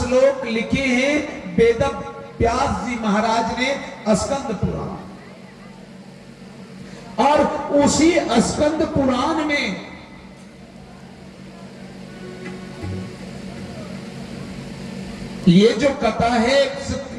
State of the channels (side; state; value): both; identical; correlation 1.00